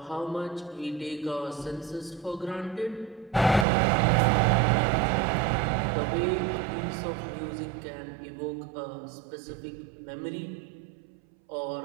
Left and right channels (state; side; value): drops out; left; at 3.7 s